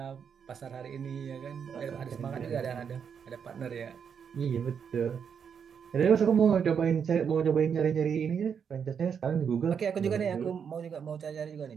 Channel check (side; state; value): left; quieter; 7.1 dB